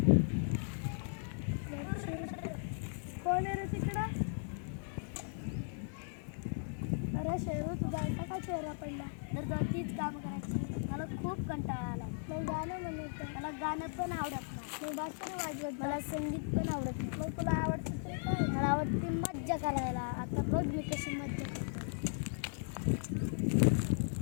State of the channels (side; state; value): right; silent; digital silence